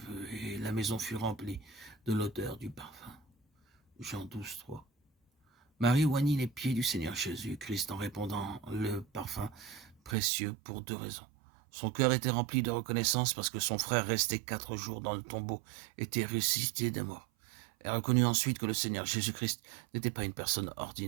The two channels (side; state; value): left; drops out; at 10.2 s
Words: et la maison fut remplie de l'odeur du parfum. Jean 12, 3. Marie oignit les pieds du Seigneur Jésus-Christ en répandant le parfum précieux pour 2 raisons. Son cœur était rempli de reconnaissance parce que son frère, resté 4 jours dans le tombeau, était ressuscité des morts. Elle reconnut ensuite que le Seigneur Jésus-Christ n'était pas une personne